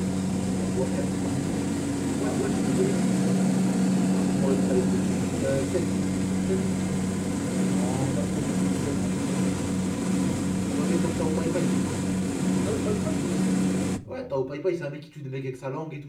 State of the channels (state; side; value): identical; both; correlation 1.00